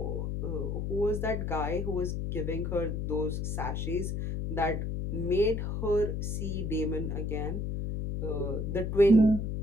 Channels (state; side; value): noise; left; hum, 2 dB below the sound